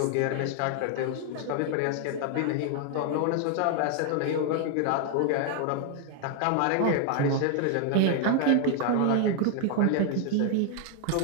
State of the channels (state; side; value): different; both; correlation 0.00